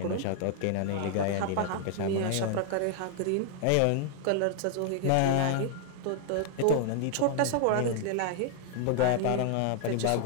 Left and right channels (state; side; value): different; both; correlation 0.00